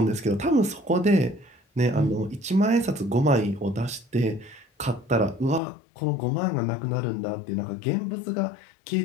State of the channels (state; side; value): drops out; right; at 5.6 s